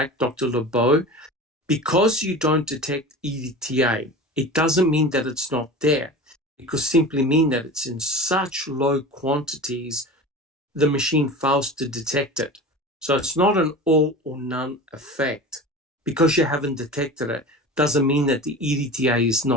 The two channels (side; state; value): both; normal; correlation 0.34